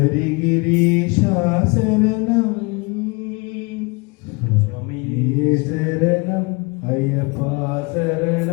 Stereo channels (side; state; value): right; quieter; 28.3 dB